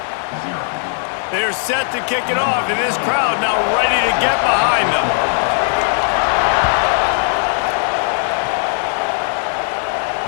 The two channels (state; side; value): silent; right; 68 dB below the other